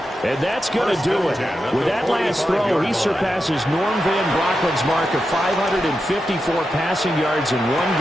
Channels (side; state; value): both; normal; correlation 0.89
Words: And that's going to do it. With that last throw, he surpasses Norm Van Brocklin's mark of 554 passing yards in one